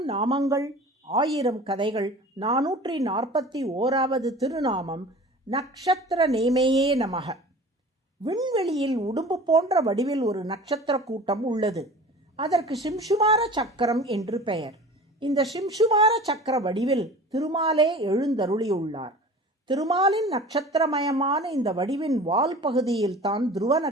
நாமங்கள் 1000 கதைகள் 441வது திருநாமம் நக்ஷத்திர நேமையே நமக. விண்வெளியில் உடும்பு போன்ற வடிவில் ஒரு நட்சத்திர கூட்டம் உள்ளது. அதற்கு சிம்சுமார சக்கரம் என்று பெயர். இந்த சிம்சுமார சக்கர வடிவில் திருமாலே எழுந்தருளியுள்ளார். திருமாலின் நட்சத்திரமயமான இந்த வடிவின் வால் பகுதியில் தான் துருவ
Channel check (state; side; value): normal; both; correlation 0.40